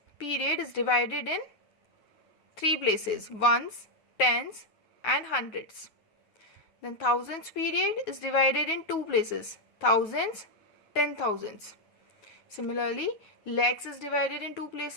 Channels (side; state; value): right; late; 9.3 ms